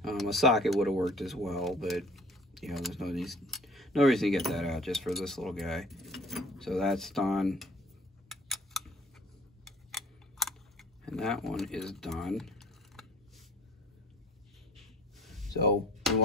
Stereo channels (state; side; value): normal; both; correlation 0.50